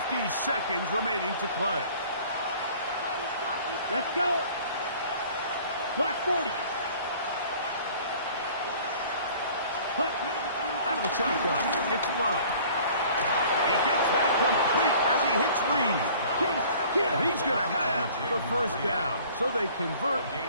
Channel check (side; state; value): both; inverted; correlation -0.50